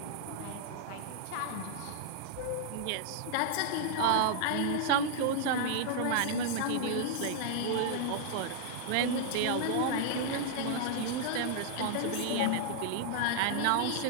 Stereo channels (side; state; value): both; different; correlation -0.01